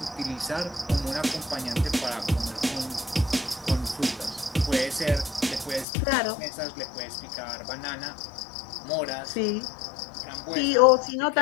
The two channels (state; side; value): drops out; right; at 5.9 s